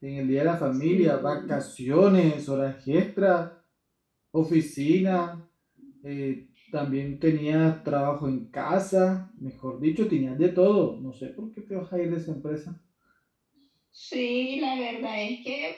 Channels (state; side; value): identical; both; correlation 1.00